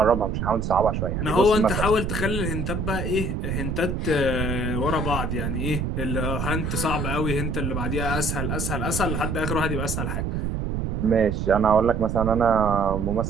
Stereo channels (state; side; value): noise; right; rumble, 2 dB below the sound